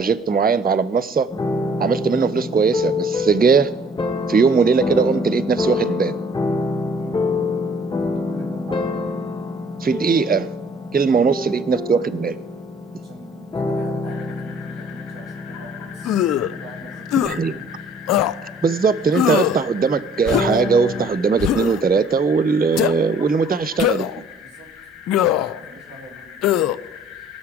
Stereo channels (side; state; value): both; normal; correlation 0.56